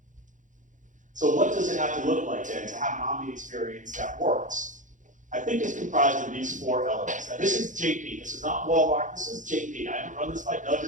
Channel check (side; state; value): left; late; 0.37 ms